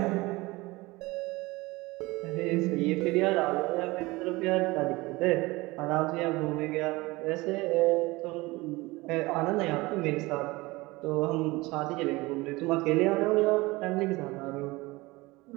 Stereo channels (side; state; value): left; quieter; 21.8 dB